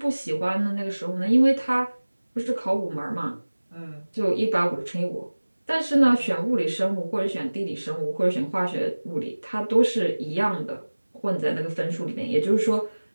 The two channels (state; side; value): inverted; both; correlation -1.00